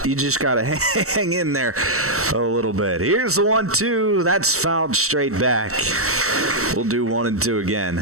you just got to hang in there a little bit. Here's the 1-2. That's fouled straight back. We'll do 1-2 again.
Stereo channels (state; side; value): late; left; 0.64 ms